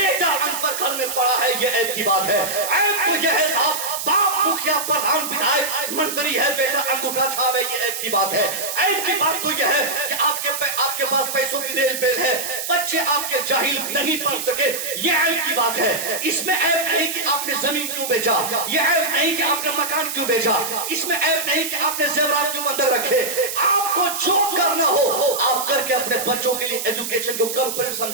अनपढ़ घर में पड़ा है, ये ऐप की बात है। ऐप तो ये है साहब, बाप मुखिया, प्रधान, विधायक, मंत्री है, बेटा अंगूठा छाप है, ये ऐप की बात है। ऐप की बात तो यह है कि आपके पास पैसों की रेल पेल है, बच्चे आपके जाहिल नहीं पढ़ सके, ये ऐप की बात है। इसमें ऐप नहीं कि आपने जमीन क्यों बेचा, ये ऐप नहीं कि आपने मकान क्यों बेचा, इसमें ऐप नहीं कि आपने जेवरात क्यों बंधक रखे। आपको जो करना हो आप करके अपने बच्चों के लिए एजुकेशन को कंप्लीट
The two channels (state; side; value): noise; right; hiss, 5 dB below the sound